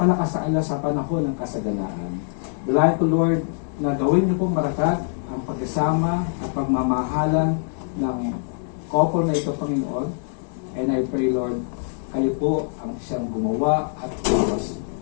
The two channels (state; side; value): silent; right; digital silence